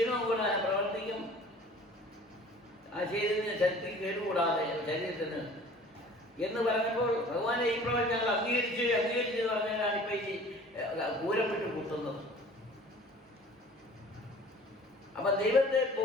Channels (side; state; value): both; normal; correlation 0.47